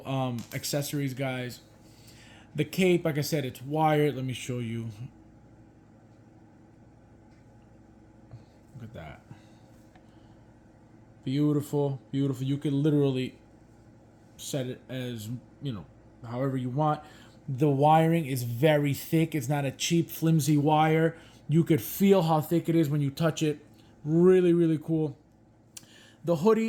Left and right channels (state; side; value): identical; both; correlation 1.00